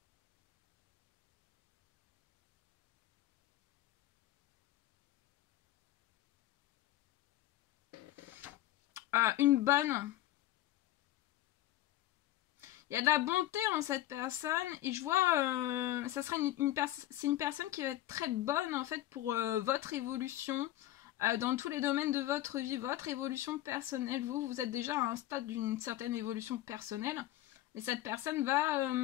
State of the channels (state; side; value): quieter; right; 14.4 dB